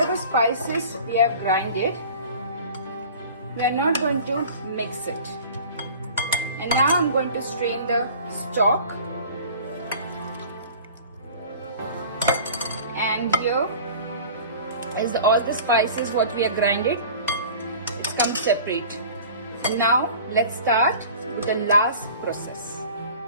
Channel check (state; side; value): inverted; both; correlation -0.43